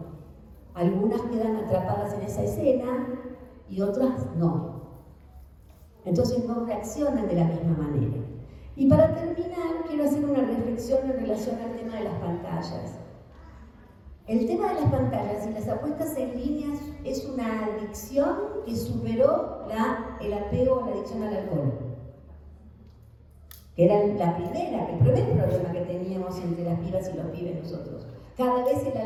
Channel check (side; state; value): both; identical; correlation 1.00